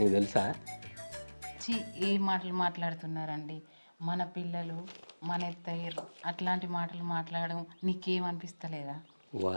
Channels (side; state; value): both; inverted; correlation -1.00